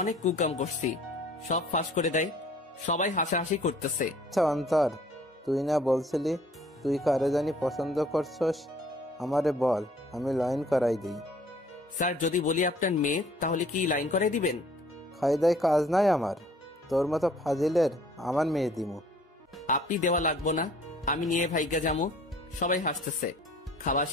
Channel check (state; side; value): normal; both; correlation 0.55